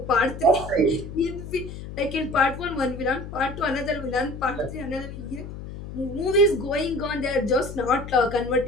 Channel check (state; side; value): noise; left; hum, 10 dB below the sound